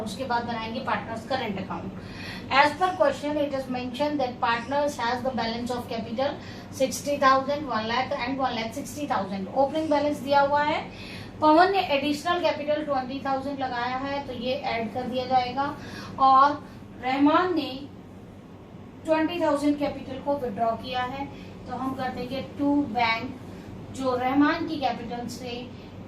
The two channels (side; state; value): both; identical; correlation 1.00